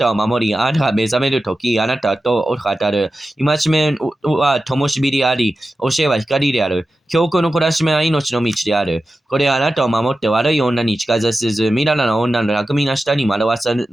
を守り、あなたが目覚めるとき、あなたと語る。戒めは灯火であり、教えは光である。教訓の懲らしめは命の道である。これはあなたを守って悪い女に近づせず、みだらな女の巧みな舌に惑わさ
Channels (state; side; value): normal; both; correlation 0.93